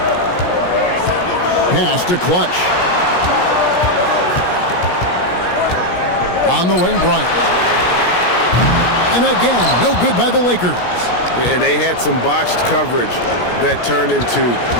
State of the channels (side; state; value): right; late; 17 ms